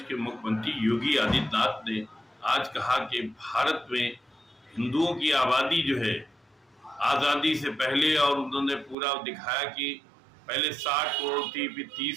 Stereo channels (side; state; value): left; drops out; at 9.0 s